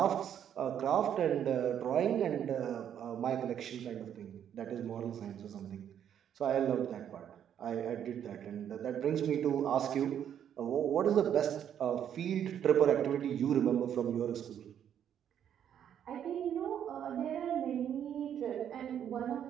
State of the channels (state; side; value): quieter; left; 9.4 dB